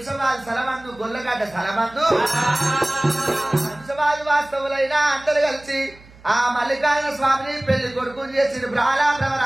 స్థలమందు గొల్లగడ్డ స్థలమందు శంసవాది వాస్తవులైన అందరు కలిసి ఆ మల్లికార్జున స్వామిని పెళ్లి కొడుకుని చేసి బ్రాహ్మణ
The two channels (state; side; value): noise; right; hum, 24 dB below the sound